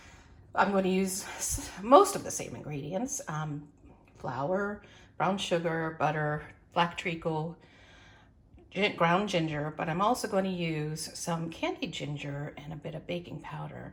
I'm going to use most of the same ingredients. Flour, brown sugar, butter, black treacle, ground ginger, but I'm also going to use some candied ginger and a bit of baking powder.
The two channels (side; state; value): both; identical; correlation 1.00